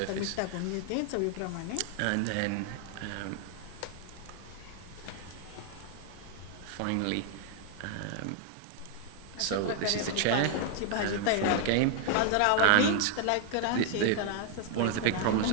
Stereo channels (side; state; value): both; different; correlation 0.00